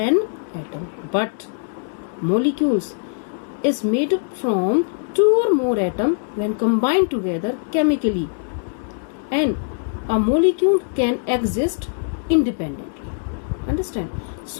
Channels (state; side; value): silent; right; digital silence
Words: atom. But molecules is made from 2 or more atoms when combined together chemically, and a molecule can exist independently. Understand?